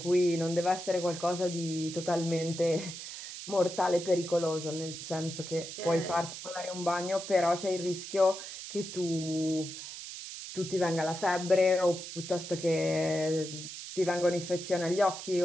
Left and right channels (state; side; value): noise; right; hiss, 10 dB below the sound